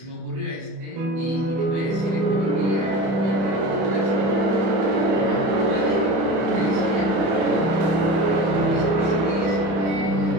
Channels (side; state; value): left; late; 31 ms